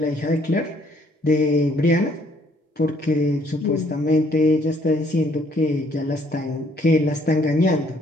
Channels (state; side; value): normal; both; correlation 0.65